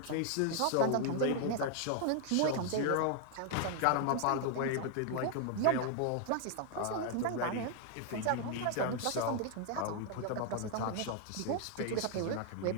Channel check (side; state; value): both; different; correlation 0.00